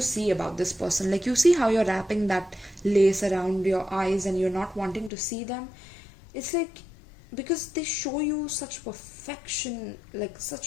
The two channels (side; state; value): right; drops out; at 5.1 s